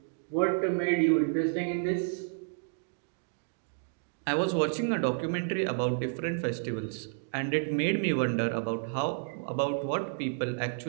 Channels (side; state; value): left; silent; digital silence